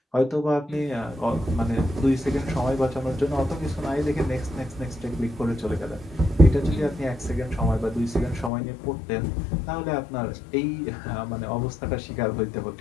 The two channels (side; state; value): right; drops out; at 8.5 s